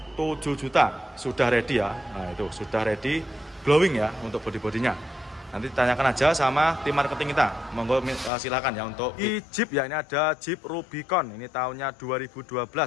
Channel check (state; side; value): drops out; right; at 8.3 s